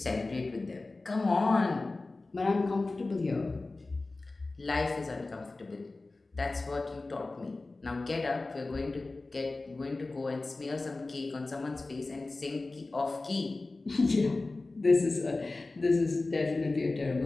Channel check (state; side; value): quieter; right; 3.3 dB